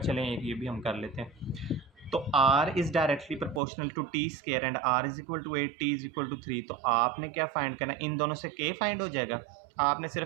चलें एक ये भी हम कर लेते हैं। तो r is directly proportional to t square and r is equal to 8, t is equal to 3। तो आपने क्या फाइंड करना है, इन दोनों से k फाइंड हो जाएगा। आपने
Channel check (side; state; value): left; drops out; at 3.6 s